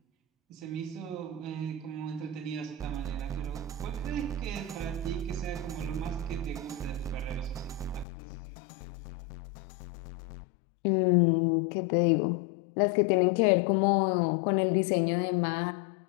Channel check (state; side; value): drops out; right; at 8.1 s